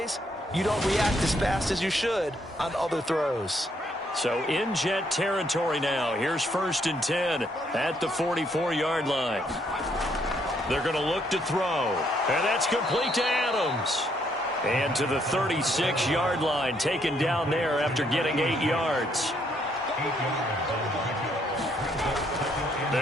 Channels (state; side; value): normal; both; correlation 0.71